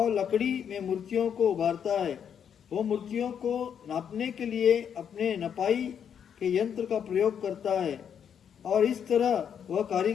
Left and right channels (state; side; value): quieter; right; 8.1 dB